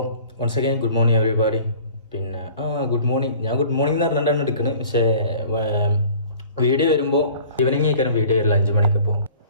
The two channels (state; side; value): inverted; both; correlation -0.48